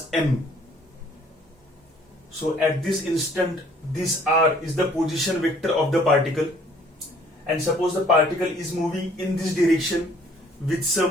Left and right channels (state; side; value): normal; both; correlation 0.58